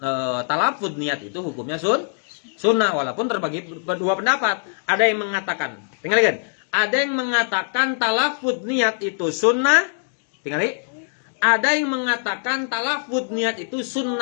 talafud niat itu hukumnya sunnah walaupun terbagi dua pendapat. Ada yang mengatakan, tinggalkan. Ada yang mengatakan talafud niat itu sunnah, tinggali. Ada yang mengatakan talafud niat itu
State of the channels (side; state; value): right; silent; digital silence